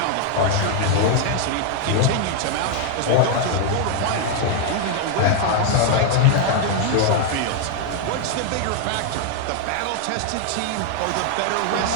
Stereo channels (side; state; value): both; different; correlation 0.00